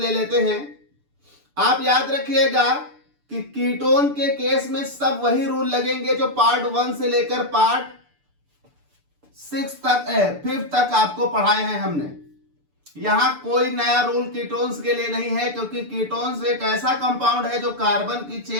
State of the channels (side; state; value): left; late; 6.8 ms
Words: लेते हैं। आप याद रखिएगा कि कीटोन के केस में सब वही रूल लगेंगे जो पार्ट 1 से लेकर पार्ट 6 तक 5 तक आपको पढ़ाए हैं हमने। यहां कोई नया रूल कीटोन्स के लिए नहीं है, क्योंकि कीटोन्स एक ऐसा कंपाउंड है जो कार्बन की